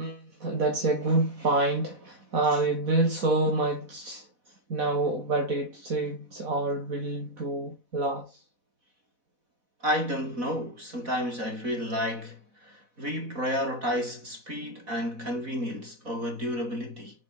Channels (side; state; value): left; late; 4.1 ms